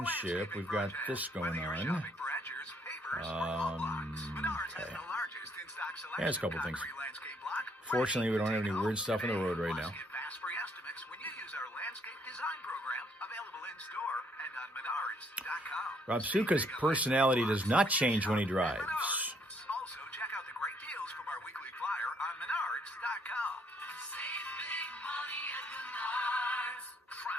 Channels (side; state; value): both; normal; correlation 0.68